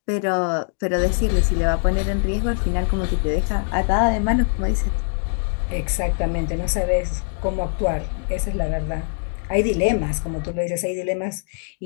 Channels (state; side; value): silent; right; digital silence